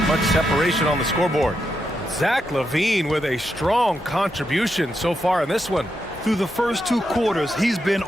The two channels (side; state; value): both; normal; correlation 0.84